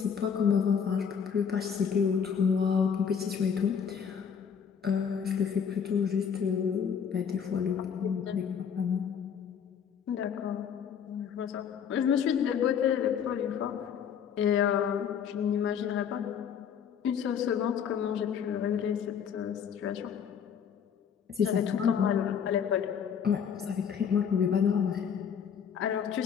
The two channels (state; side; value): quieter; right; 7.5 dB